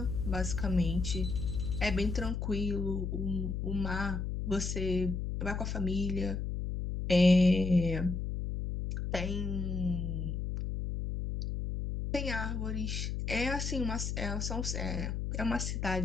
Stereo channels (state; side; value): noise; left; hum, 2 dB below the sound